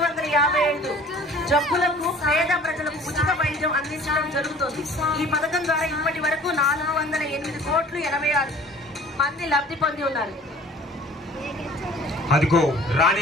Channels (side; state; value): both; normal; correlation 0.49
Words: ఈ పథకం ద్వారా ఇప్పటి వరకు 408,86 మంది లబ్ధి పొంది ఉన్నారు. అదిగో